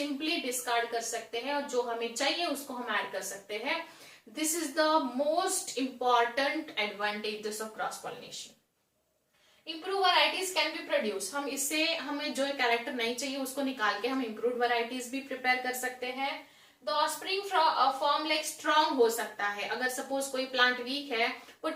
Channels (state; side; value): identical; both; correlation 1.00